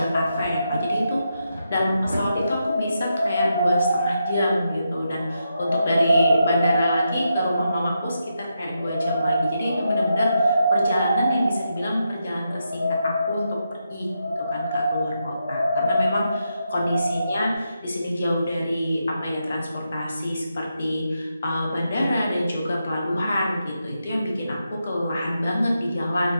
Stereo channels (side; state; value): both; inverted; correlation -0.84